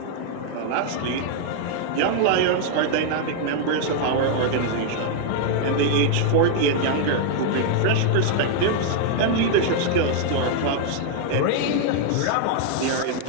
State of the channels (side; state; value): both; different; correlation 0.00